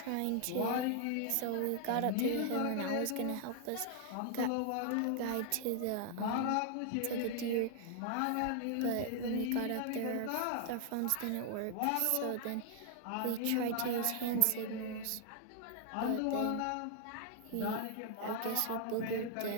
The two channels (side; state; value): both; different; correlation 0.00